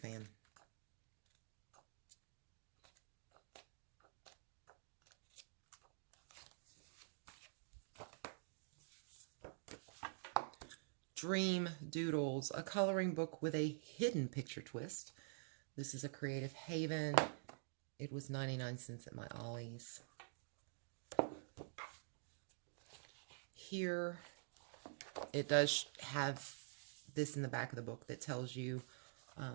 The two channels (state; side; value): silent; left; digital silence